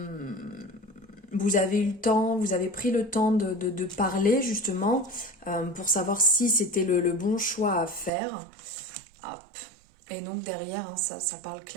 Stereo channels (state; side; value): drops out; left; at 8.1 s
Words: Vous avez eu le temps, vous avez pris le temps de parler justement pour savoir si c'était le bon choix à faire. Hop. Et donc derrière, hein, ça parle